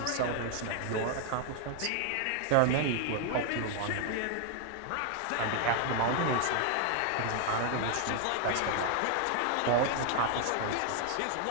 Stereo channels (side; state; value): both; different; correlation 0.00